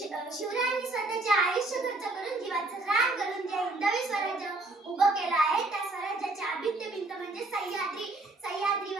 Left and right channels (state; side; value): quieter; left; 3.1 dB